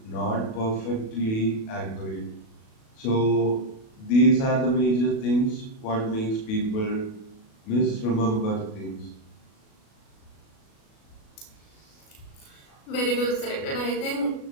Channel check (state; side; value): late; right; 37 ms